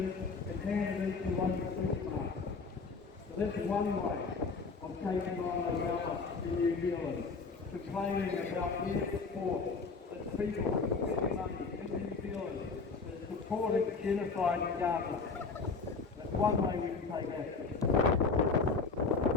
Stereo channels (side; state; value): right; quieter; 4.5 dB